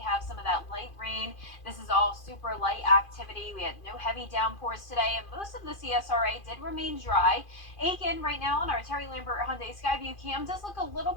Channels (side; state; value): right; late; 2.5 ms